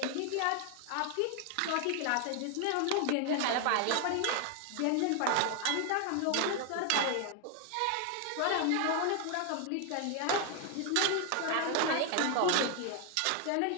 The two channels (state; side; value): different; both; correlation 0.01